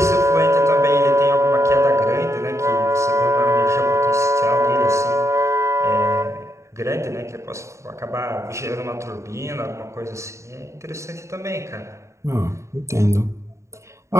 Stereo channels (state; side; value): late; left; 0.14 ms